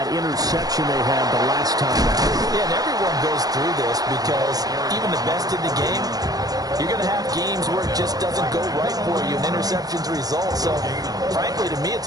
interception they had the last time out. Yeah, and everyone goes through this because even the best in the game, you're going to have games where it just doesn't go right for you, and interceptions result. So, frankly, to me,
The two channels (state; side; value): late; left; 0.18 ms